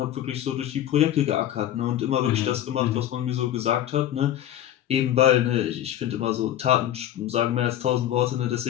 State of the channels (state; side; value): quieter; right; 11.9 dB